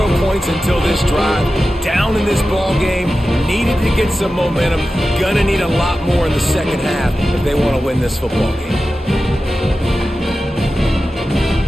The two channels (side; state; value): both; normal; correlation 0.93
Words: points until this drive. Down in this ball game. Needed to get some momentum. Gonna need a lot more in the second half if they want to win this football game.